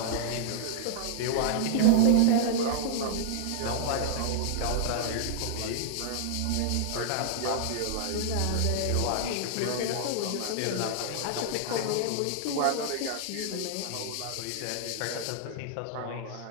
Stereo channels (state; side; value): different; both; correlation -0.01